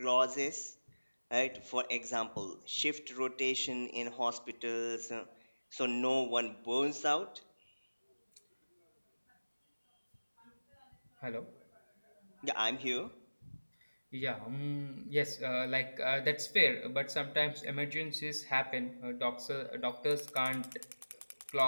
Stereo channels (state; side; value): inverted; both; correlation -1.00